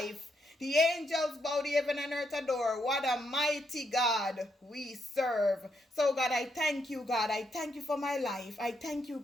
The angels bow, the heaven and earth adore. What a mighty God we serve. So, God, I thank you, God. I thank you for my life. I thank you,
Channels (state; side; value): normal; both; correlation 0.78